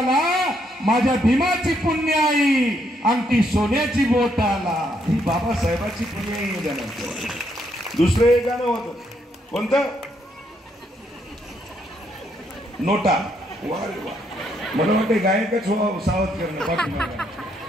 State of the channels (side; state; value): both; normal; correlation 0.74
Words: माझ्या भीमाची पुण्याई अंगठी सोन्याची बोटाला. ही बाबासाहेबाची पुण्याई ध्यानात ठेवा. दुसरं एक गाणं होतं, कोणतं? नोटा. वा रे वा, मला वाटतं गायकच व्हावं सावध करणं पाठीमागे.